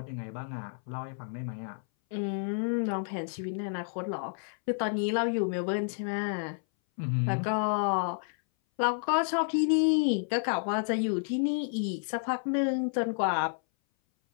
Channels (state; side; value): silent; right; 58 dB below the other